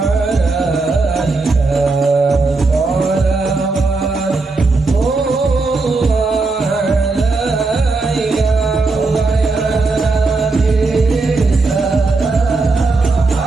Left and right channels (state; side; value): quieter; left; 3.7 dB